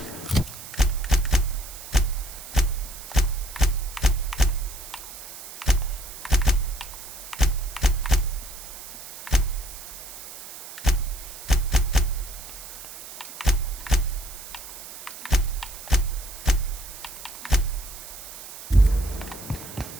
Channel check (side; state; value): right; noise; hiss, 13 dB below the sound